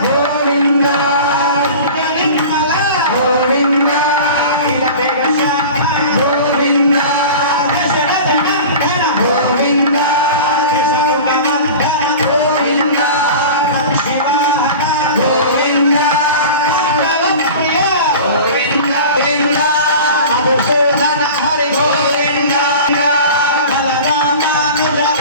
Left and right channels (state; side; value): inverted; both; correlation -0.36